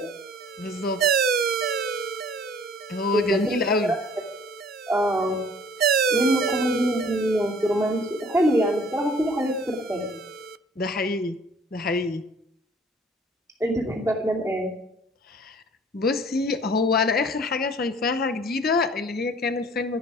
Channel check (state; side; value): normal; both; correlation 0.54